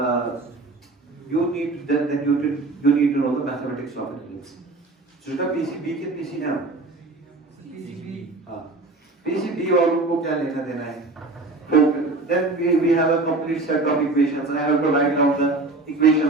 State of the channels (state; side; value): quieter; left; 3.2 dB